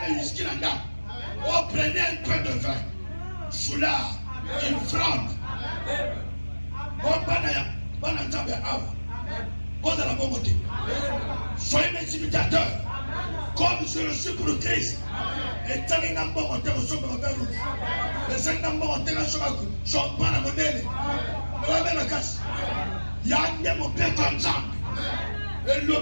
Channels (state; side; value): inverted; both; correlation -1.00